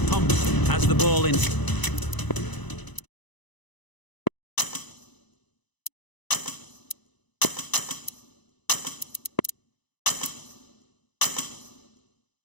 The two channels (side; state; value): right; late; 1.0 ms